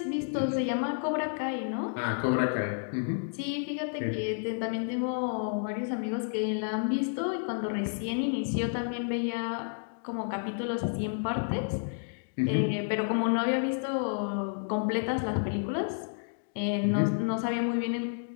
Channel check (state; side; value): silent; right; digital silence